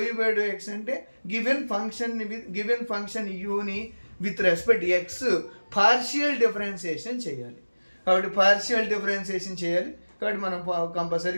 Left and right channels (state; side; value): inverted; both; correlation -1.00